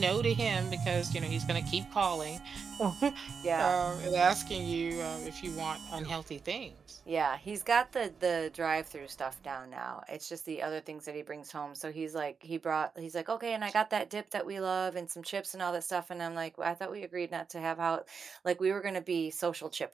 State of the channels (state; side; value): quieter; left; 5.8 dB